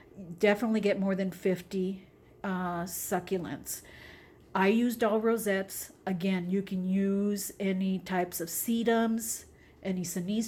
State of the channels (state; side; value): identical; both; correlation 1.00